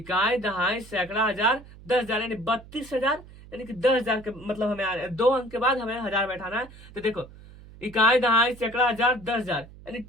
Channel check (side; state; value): right; noise; hum, 20 dB below the sound